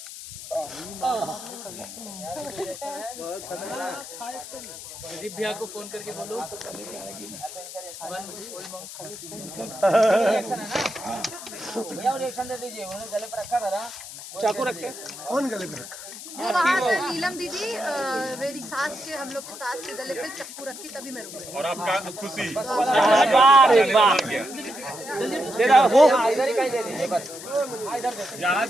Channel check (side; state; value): left; noise; hiss, 12 dB below the sound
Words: भैया को फोन करके बोलो। भैया रिएक्शन दे दीजिए, उन्होंने गले पर रखा था ना, चाकू रख के। कौन गले पे रखा? वो वहाँ से नीलम दीदी मेरी सास के, हम लोग की सास के गले पे चप्पू रखी, तभी मैं रुक गई। और आपका खुशी वो इधर ही कहीं दे दीजिए बस, इधर दे दीजिए। जहाँ